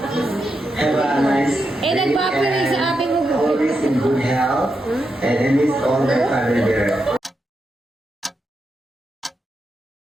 have a nice day, and always in good health, and I miss all my family there.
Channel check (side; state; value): both; normal; correlation 0.85